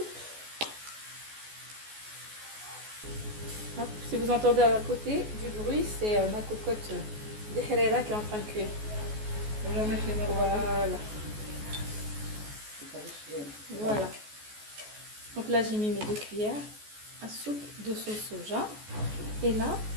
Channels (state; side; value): late; left; 14 ms